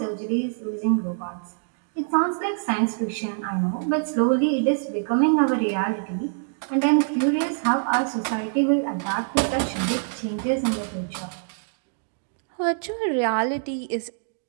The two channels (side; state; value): left; silent; digital silence